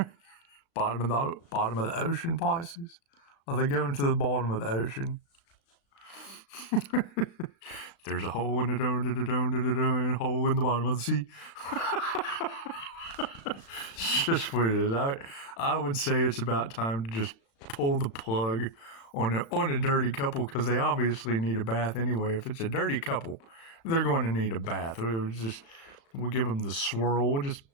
bottom of the ocean, Pisces. Are they going to the bottom of the ocean? There's a hole in the hole in the bottom of the sea. It's just what it is. I would say it's about time to just pull the plug on a dirty couple, because they obviously need a bath anyway. If it's a dirty couple, they're going to need a bath. We'll give them the swirl. We'll just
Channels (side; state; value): right; late; 36 ms